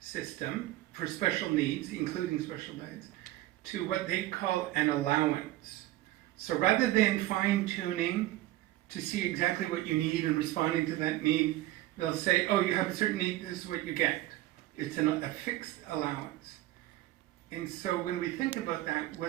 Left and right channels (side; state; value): left; quieter; 16.2 dB